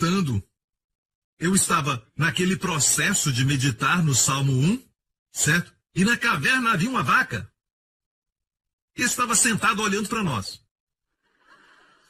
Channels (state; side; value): identical; both; correlation 1.00